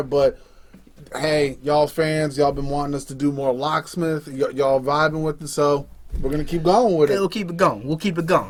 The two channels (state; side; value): identical; both; correlation 1.00